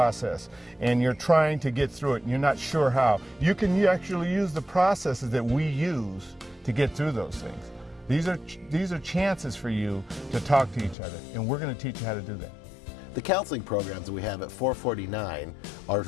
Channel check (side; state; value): right; drops out; at 11.0 s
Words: and you're trying to get through it and you're not sure how, you actually use the processes that we use to get through those things. These are chances for you to talk to each other, and we're going to teach you how to do that. The counseling programs that we have at 449 are